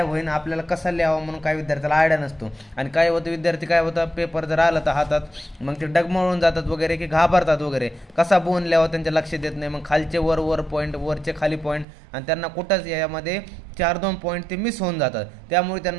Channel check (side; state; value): left; drops out; at 11.9 s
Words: होईल, आपल्याला कसा लिहावा म्हणून काही विद्यार्थ्याला आयडिया नसतो आणि काय होतं, विद्यार्थी काय होतं पेपर जर आला तर हातात मग ते डगमळून जातात वगैरे की घाबरतात वगैरे, कसा बोन लिहावा त्यांच्या लक्षात येत नाही। मग खालचे वर पॉईंट, वरचे खाली पॉईंट आणि त्यांना कुठंच यामध्ये 4-2 पॉईंट ते मिस होऊन जातात, त्यामुळे